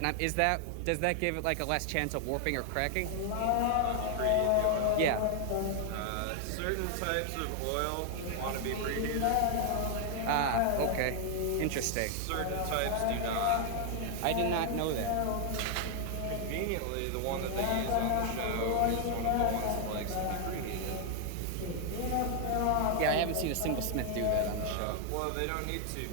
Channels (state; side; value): different; both; correlation 0.00